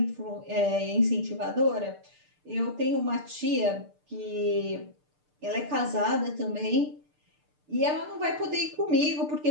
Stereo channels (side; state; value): left; late; 6.7 ms